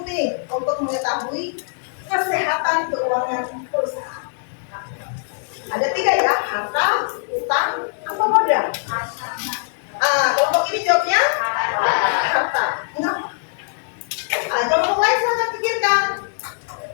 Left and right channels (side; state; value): right; silent; digital silence